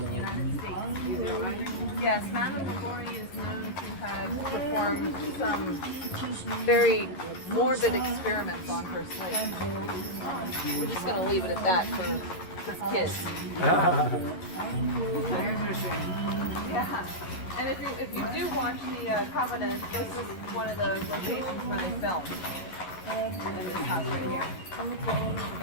the United States. Is that right? Yes, Madame LaLaurie is known to have performed some very morbid experiments on her slaves. We're just going to leave it at that for kids. I understand. Yeah. And if you do watch the Covenant, this is one of the locations where they filmed. In this house right here. The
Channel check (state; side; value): late; right; 11 ms